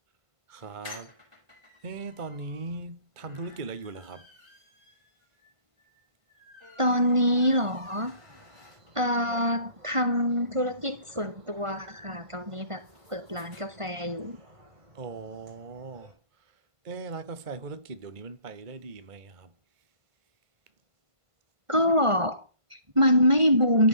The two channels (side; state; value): left; late; 1.5 ms